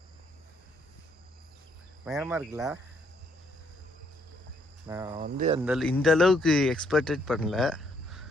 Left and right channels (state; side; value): normal; both; correlation 0.70